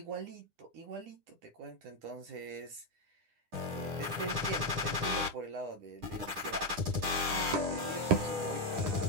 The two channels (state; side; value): late; left; 9.9 ms